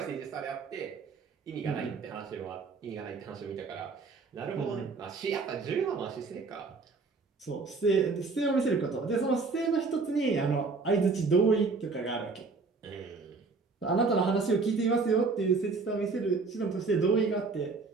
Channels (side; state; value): left; quieter; 4.2 dB